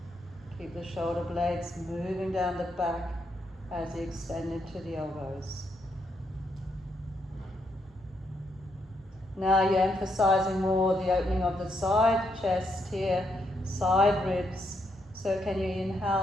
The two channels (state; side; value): normal; both; correlation 0.78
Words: Keep the shoulder blades moving down the back as you extend into the elbows. Now you're emphasizing more the opening of the side chest here, side ribs. So can you